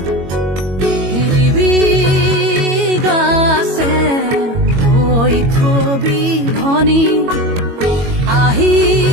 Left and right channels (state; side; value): late; left; 22 ms